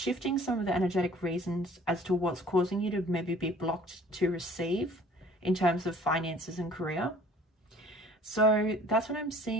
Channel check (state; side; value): normal; both; correlation 0.52